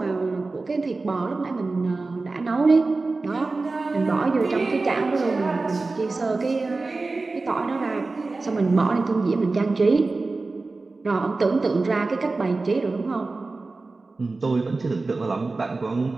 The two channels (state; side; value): quieter; left; 3.6 dB